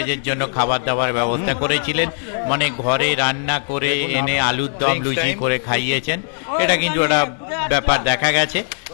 জন্য খাবার দাবার ব্যবস্থা করেছিলেন, মানে ঘরে রান্না করে এনে আলুর দম লুচি করে খাইয়েছেন। এটা কিন্তু একটা ব্যাপার দেখা গেছে।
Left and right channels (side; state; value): right; silent; 66 dB below the other